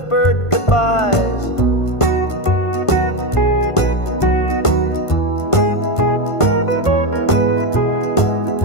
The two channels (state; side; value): late; right; 1.5 ms